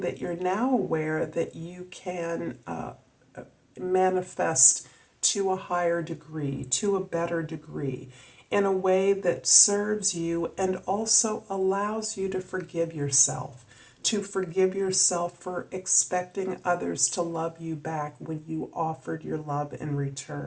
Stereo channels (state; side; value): identical; both; correlation 1.00